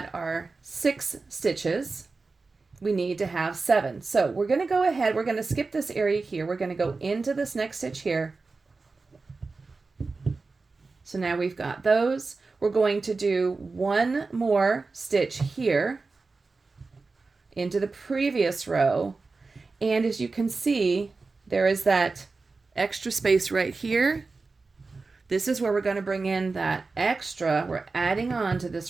our 6 stitches. We need to have 7. So we're going to go ahead. We're going to skip this area here. We're going to go into this next stitch here. So now we've got those. We're going to do 1 more stitch here into the previous row. And as you can see, there is that extra space right here. This is where we're going to bring in that extra. We're adding on to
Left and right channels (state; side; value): quieter; left; 4.0 dB